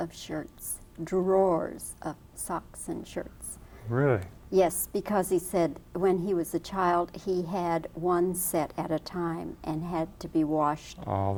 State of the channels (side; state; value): both; identical; correlation 1.00